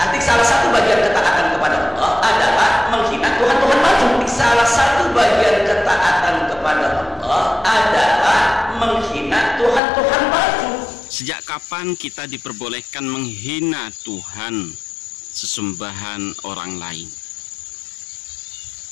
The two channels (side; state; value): right; drops out; at 9.8 s